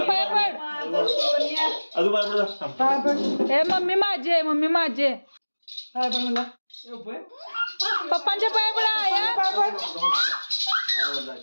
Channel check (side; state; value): both; inverted; correlation -1.00